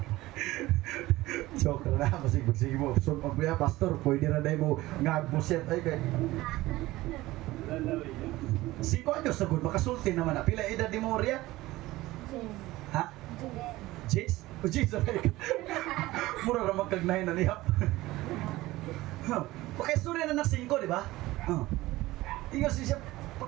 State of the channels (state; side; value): quieter; left; 18.1 dB